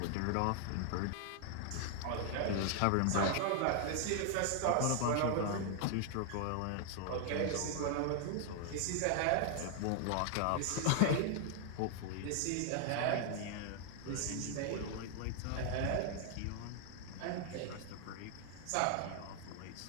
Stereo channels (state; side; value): different; both; correlation 0.00